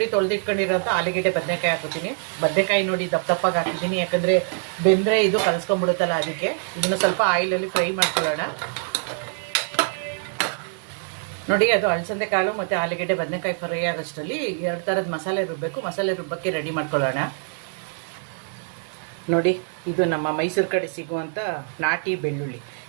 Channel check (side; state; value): left; silent; 62 dB below the other